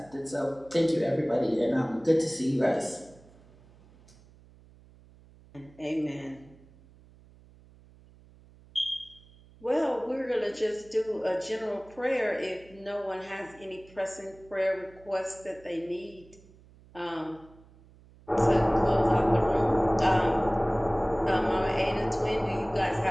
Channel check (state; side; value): noise; right; hum, 25 dB below the sound